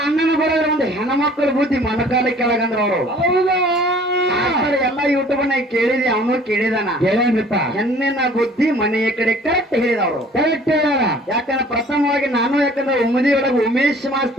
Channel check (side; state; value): both; normal; correlation 0.52